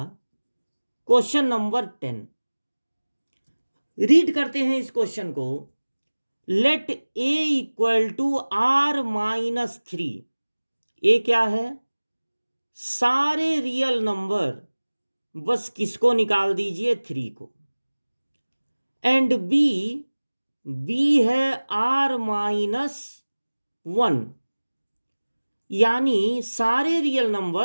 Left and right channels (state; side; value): inverted; both; correlation -1.00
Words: क्वेश्चन नंबर 10। रीड करते हैं इस क्वेश्चन को। Let A equal to R minus 3। A क्या है? सारे रियल नंबर, बस किसको निकाल दीजिए? 3 को। एंड बी, बी है आर माइनस 1, यानी सारे रियल